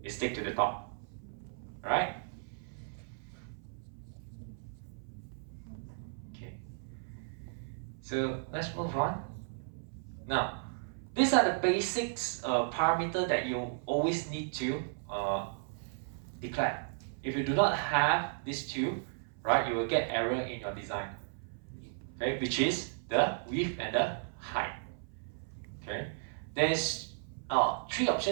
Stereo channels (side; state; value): left; silent; 55 dB below the other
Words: It sticks to the top. Alright? Okay. So let's move on. Now, these are the basics parameter that you always need to declare. If you do not have these two, right, you will get error in your design. Okay, which is the width and the height. Okay, there's three